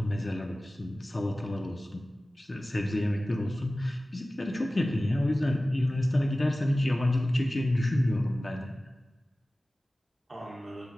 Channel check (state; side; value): normal; both; correlation 0.97